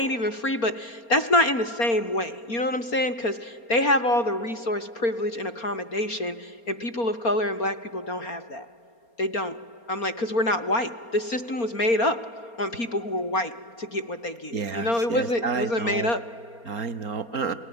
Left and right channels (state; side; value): late; right; 4.3 ms